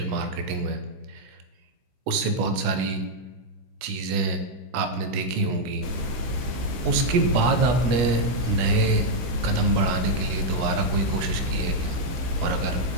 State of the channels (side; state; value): left; late; 16 ms